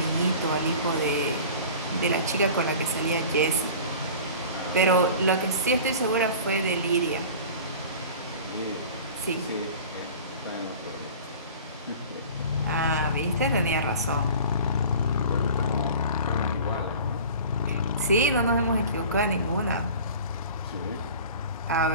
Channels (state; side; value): inverted; both; correlation -0.40